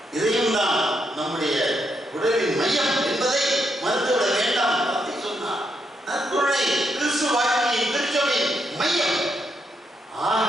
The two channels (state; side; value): normal; both; correlation 0.79